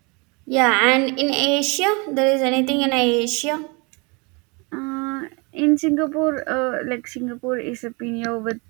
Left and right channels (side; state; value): left; quieter; 29.8 dB